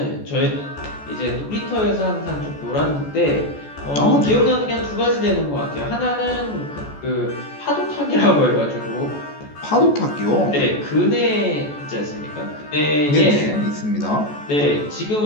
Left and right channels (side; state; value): right; late; 14 ms